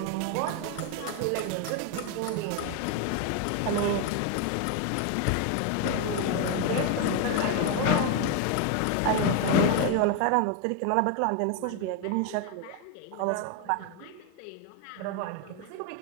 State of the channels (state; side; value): different; both; correlation 0.01